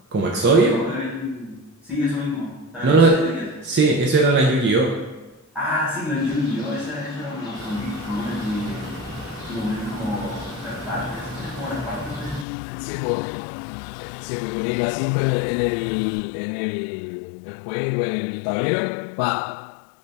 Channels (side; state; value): right; drops out; at 12.5 s